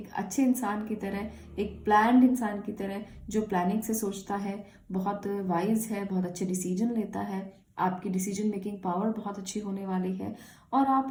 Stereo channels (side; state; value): both; identical; correlation 1.00